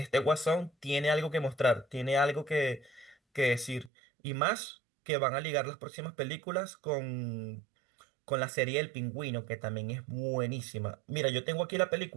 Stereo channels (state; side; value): drops out; left; at 3.9 s